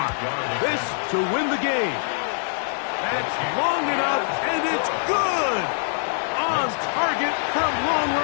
This to win the game. That's long enough, and it's good! On target from long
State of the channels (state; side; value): silent; right; 63 dB below the other